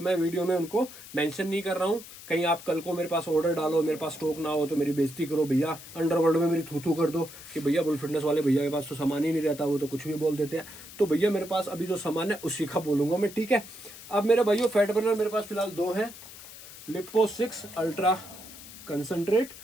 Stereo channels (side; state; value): left; noise; hiss, 16 dB below the sound